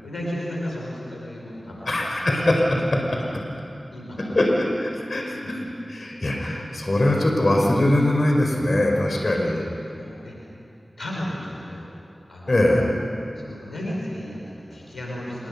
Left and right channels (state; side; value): normal; both; correlation 0.96